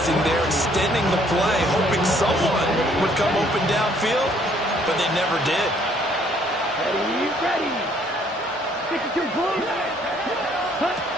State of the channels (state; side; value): normal; both; correlation 0.63